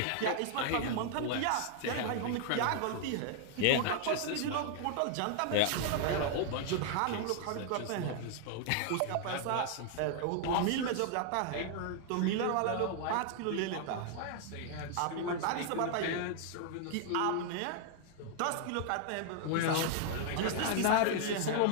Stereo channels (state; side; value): different; both; correlation 0.00